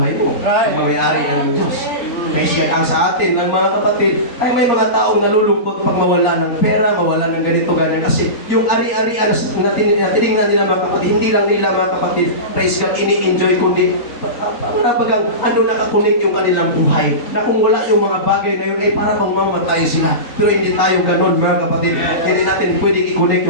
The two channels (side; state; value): right; late; 3.9 ms